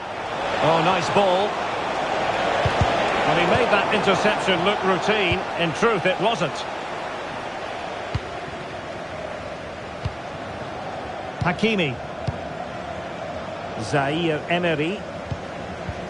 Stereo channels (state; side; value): identical; both; correlation 1.00